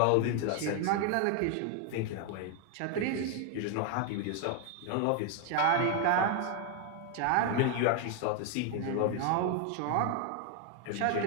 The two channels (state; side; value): different; both; correlation 0.01